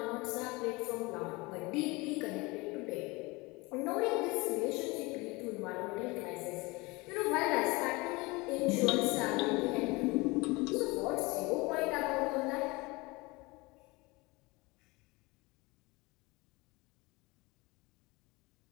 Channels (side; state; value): right; quieter; 24.3 dB